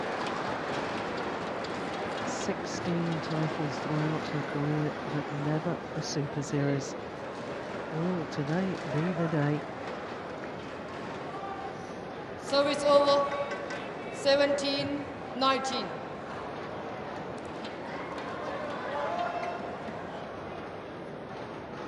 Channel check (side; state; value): both; identical; correlation 1.00